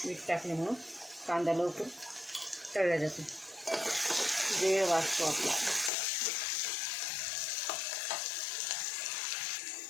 मीठ टाकल्यामुळं कांदा लवकर तळला जातो, वेळ वाचतो आपला।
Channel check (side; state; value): right; drops out; at 5.9 s